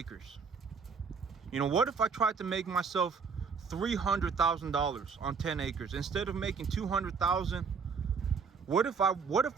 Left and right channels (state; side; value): quieter; left; 5.6 dB